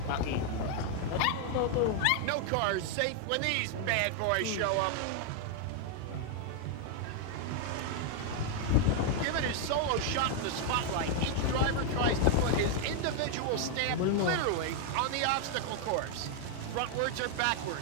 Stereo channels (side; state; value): both; different; correlation 0.00